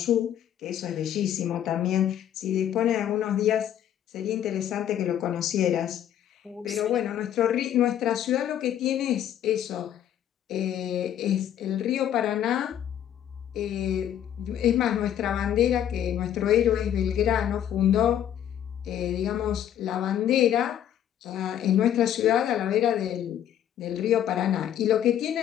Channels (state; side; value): quieter; right; 10.5 dB